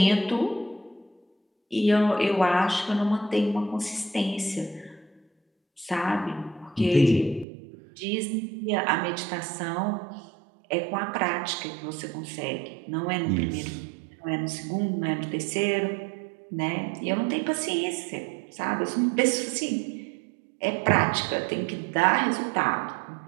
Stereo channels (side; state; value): left; drops out; at 7.5 s